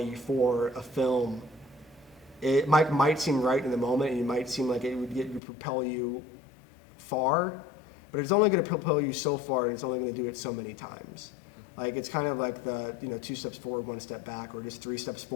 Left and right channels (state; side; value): drops out; right; at 5.4 s